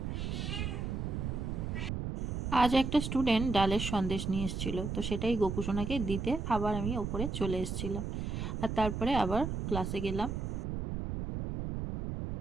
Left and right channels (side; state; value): right; noise; rumble, 3 dB below the sound